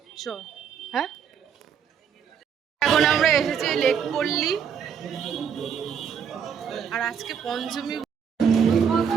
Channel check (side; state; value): left; quieter; 7.4 dB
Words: হ্যাঁ, এখন আমরা এসেছি লেকপল্লী। আর আজকে পঞ্চমী,